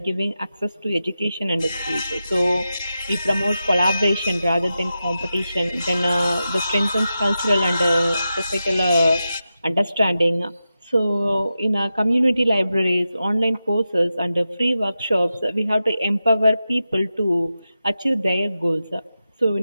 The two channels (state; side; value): inverted; both; correlation -0.90